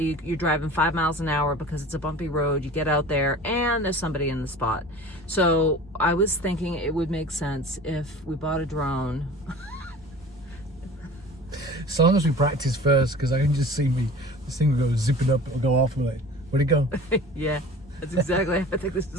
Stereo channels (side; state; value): both; normal; correlation 0.41